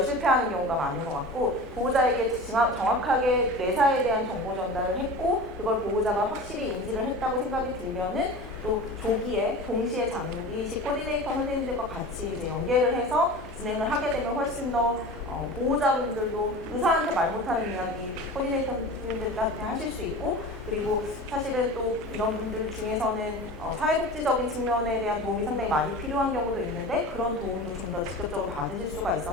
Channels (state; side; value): normal; both; correlation 0.34